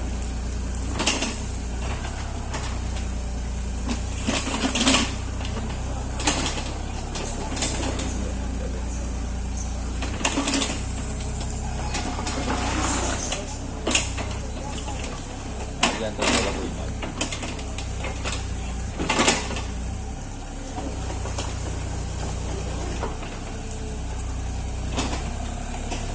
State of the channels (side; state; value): both; identical; correlation 1.00